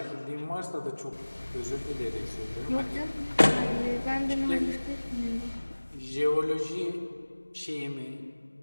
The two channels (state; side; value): inverted; both; correlation -1.00